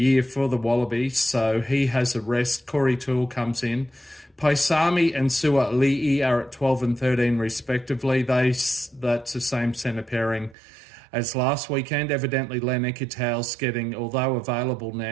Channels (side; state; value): left; drops out; at 10.6 s